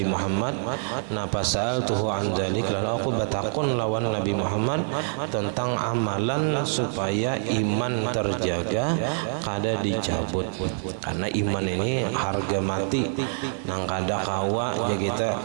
Muhammad. Napa sa'altuhu an dzalik, lalu aku batakun lawan Nabi Muhammad tentang amalan supaya iman terjaga kada dicabut, karena iman ini harga mati nang kada kawa ya kita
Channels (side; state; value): left; silent; digital silence